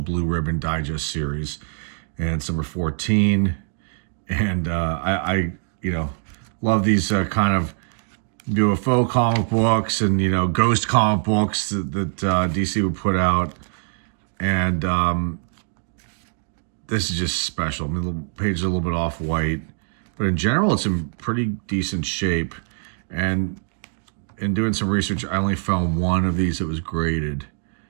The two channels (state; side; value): silent; left; digital silence